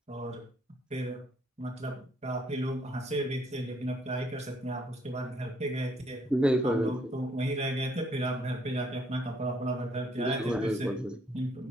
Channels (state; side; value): normal; both; correlation 0.68